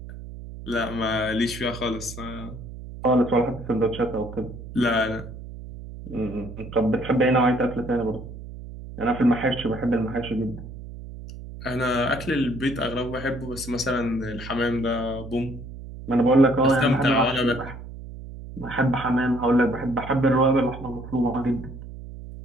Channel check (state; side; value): noise; right; hum, 12 dB below the sound